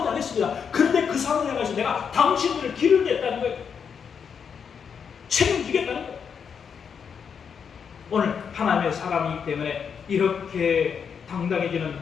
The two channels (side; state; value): right; quieter; 6.8 dB